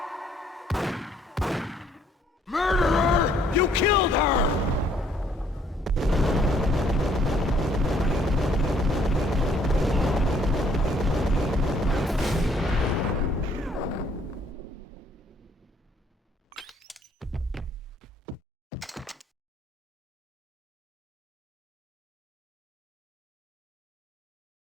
Murderer! You killed her!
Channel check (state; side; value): normal; both; correlation 0.64